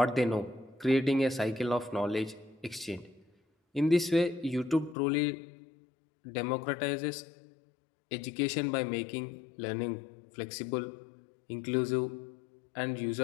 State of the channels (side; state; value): right; drops out; at 5.0 s